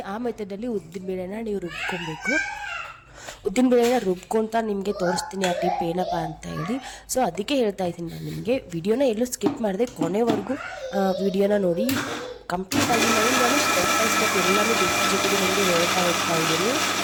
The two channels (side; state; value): both; identical; correlation 1.00